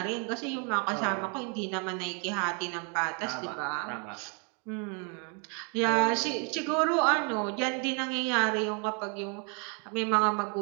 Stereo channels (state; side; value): quieter; left; 37.5 dB